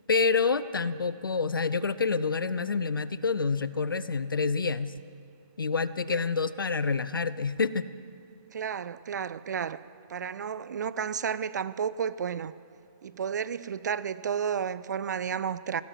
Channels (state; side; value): inverted; both; correlation -0.47